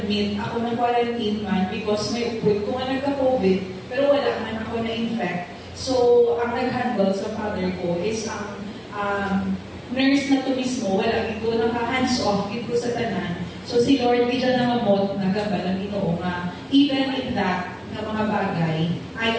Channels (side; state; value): both; identical; correlation 1.00